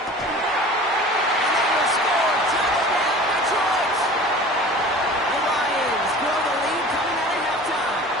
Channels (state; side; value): normal; both; correlation 0.41